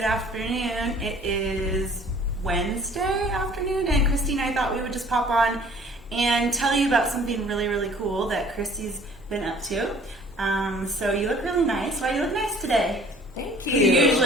afternoon. It is Wednesday afternoon, and Christy and I thought we would just pop on and tell you about something really, really cool that Christy's been up to. So you look really nice. Why do you look nice today? Thank you. You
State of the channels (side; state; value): both; normal; correlation 0.53